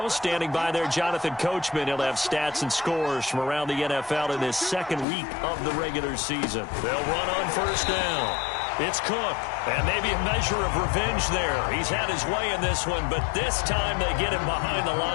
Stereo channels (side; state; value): right; drops out; at 5.1 s